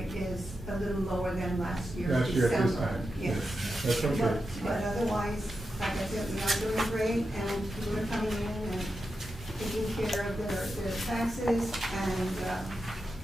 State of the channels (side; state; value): both; normal; correlation 0.89